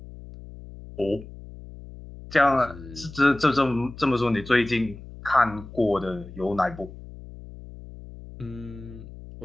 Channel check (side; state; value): left; noise; hum, 15 dB below the sound